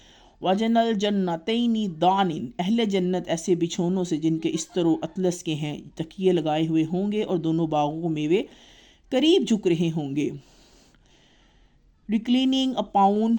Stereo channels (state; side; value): identical; both; correlation 1.00